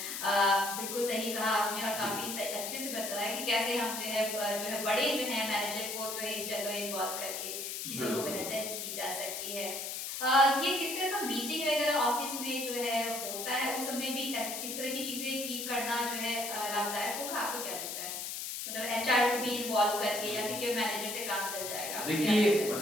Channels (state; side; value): noise; left; hiss, 5 dB below the sound